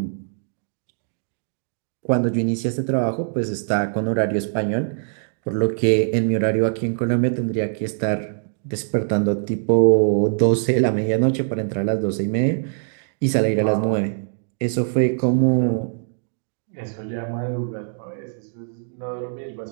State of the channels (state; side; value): silent; left; digital silence